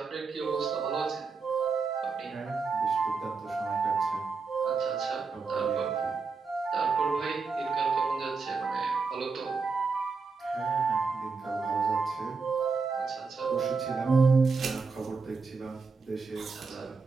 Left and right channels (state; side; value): quieter; left; 4.7 dB